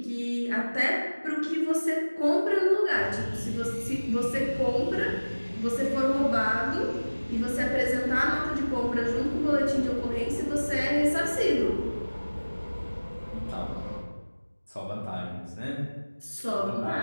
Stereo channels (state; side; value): inverted; both; correlation -1.00